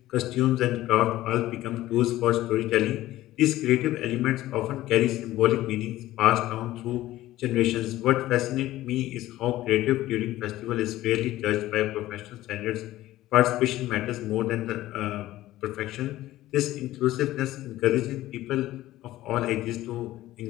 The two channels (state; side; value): quieter; right; 15.5 dB